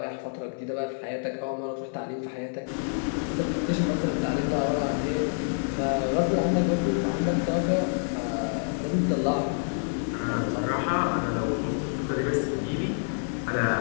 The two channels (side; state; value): right; silent; 60 dB below the other